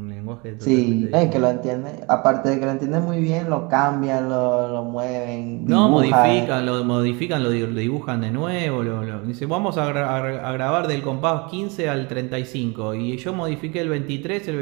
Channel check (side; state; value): left; quieter; 27.9 dB